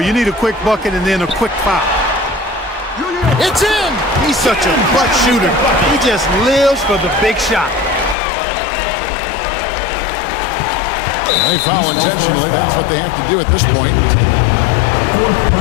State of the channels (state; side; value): drops out; right; at 8.2 s